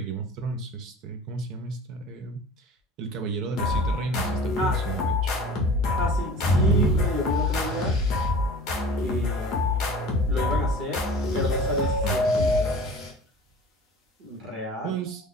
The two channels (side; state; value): both; normal; correlation 0.41